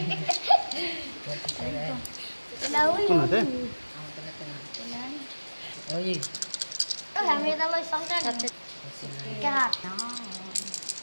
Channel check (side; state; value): both; inverted; correlation -1.00